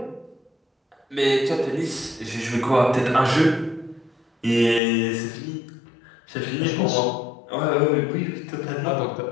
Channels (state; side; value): drops out; right; at 4.8 s